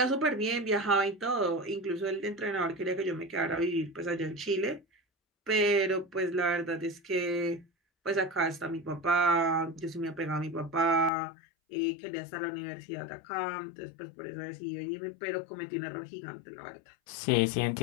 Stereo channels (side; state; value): right; drops out; at 11.1 s